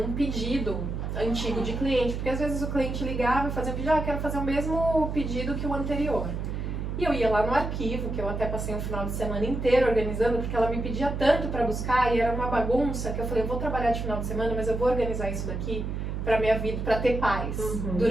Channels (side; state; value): right; noise; hum, 3 dB below the sound